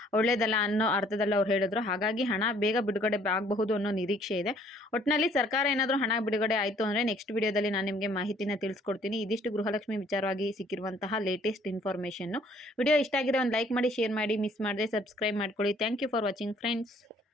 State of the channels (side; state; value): both; normal; correlation 0.60